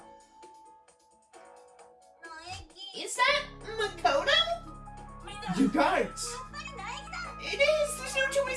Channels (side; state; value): both; identical; correlation 1.00